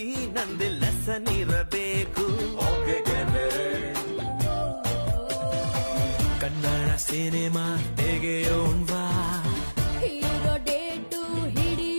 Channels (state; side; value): inverted; both; correlation -1.00